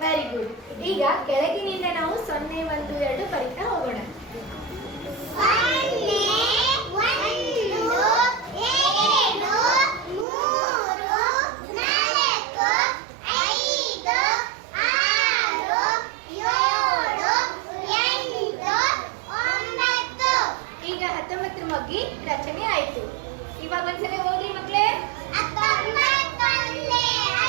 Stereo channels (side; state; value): left; drops out; at 10.2 s